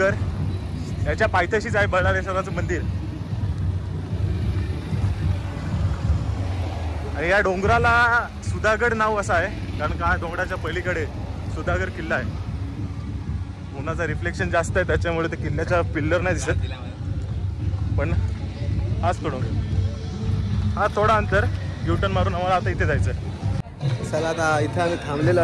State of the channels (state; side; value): identical; both; correlation 1.00